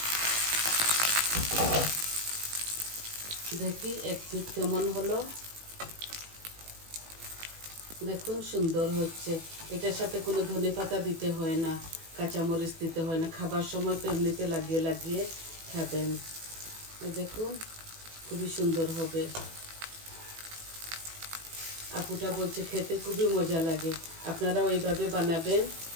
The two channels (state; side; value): late; left; 18 ms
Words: দেখি এক পিঠ কেমন হলো। দেখুন সুন্দর হচ্ছে। এটার সাথে কোনো ধনেপাতা দিতে হয় না, কাঁচামরিচ দিতে হয় না, খাবার সময় তো এমনিতে লাগিয়ে লাগিয়ে খাবেন। দেখুন খুবই সুন্দর হবে। আপুটা বলছে খেতে খুবই মজা লাগে, আপনারাও এইভাবে বানাবেন,